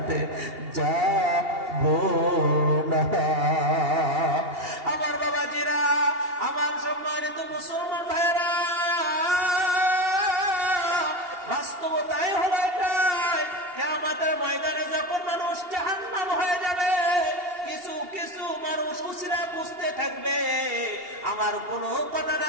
যাবো না। আমার বাবাজিরা, আমার সম্মানিত মুসলমান ভাইয়েরা, বাস্তবতাই হলো এটাই। কিয়ামতের ময়দানে যখন মানুষ জাহান্নাম হয়ে যাবে, কিছু কিছু মানুষ উসিলা বুঝতে থাকবে। আমার কোনো কথা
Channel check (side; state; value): left; late; 2.8 ms